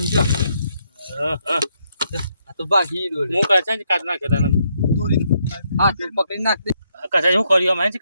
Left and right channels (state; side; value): inverted; both; correlation -0.76